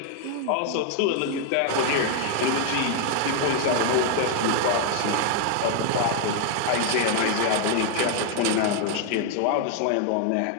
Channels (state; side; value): different; both; correlation 0.00